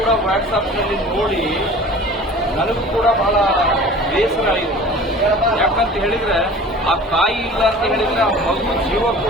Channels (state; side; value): normal; both; correlation 0.42